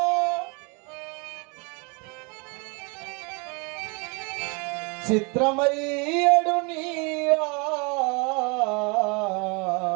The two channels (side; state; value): left; quieter; 31.6 dB